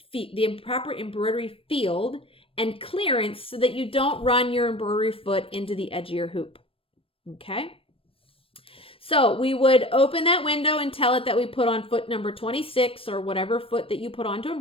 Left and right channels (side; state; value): right; late; 0.27 ms